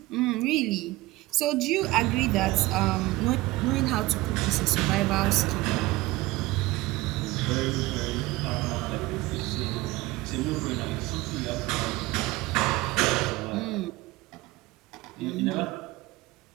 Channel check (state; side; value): quieter; left; 19.5 dB